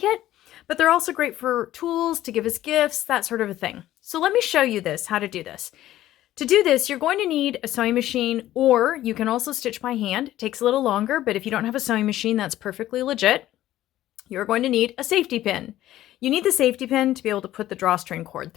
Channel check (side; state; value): right; quieter; 13.9 dB